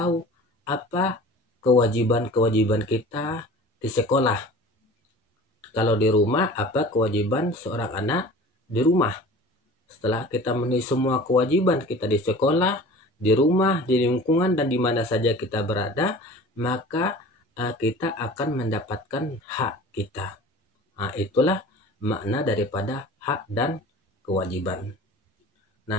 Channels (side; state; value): both; normal; correlation 0.41